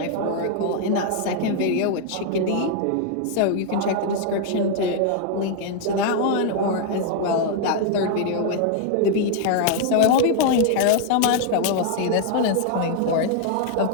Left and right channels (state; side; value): different; both; correlation 0.00